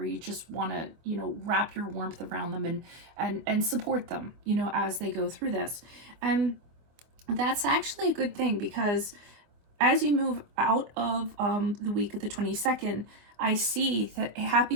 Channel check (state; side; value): late; left; 24 ms